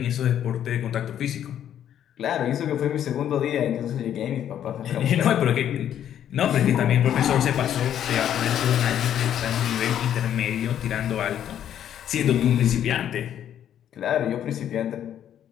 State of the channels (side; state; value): right; quieter; 10.2 dB